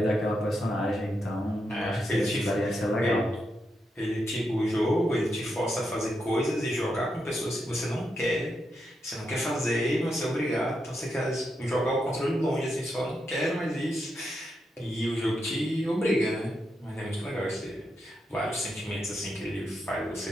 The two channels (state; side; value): normal; both; correlation 0.84